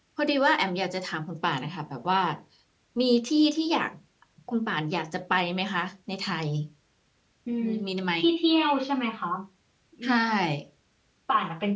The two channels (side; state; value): both; identical; correlation 1.00